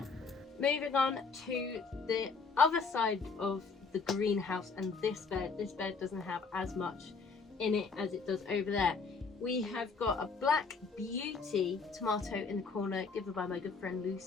Moving on to the other side of the greenhouse and this bed. This bed doesn't have as much in it as it does over there. We have got a Black Beauty tomato in the corner, given by my good friend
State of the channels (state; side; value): quieter; right; 4.8 dB